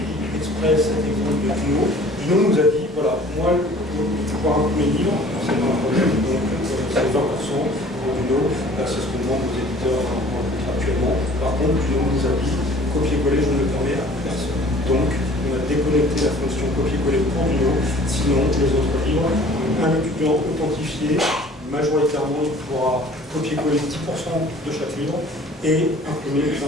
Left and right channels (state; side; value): normal; both; correlation 0.50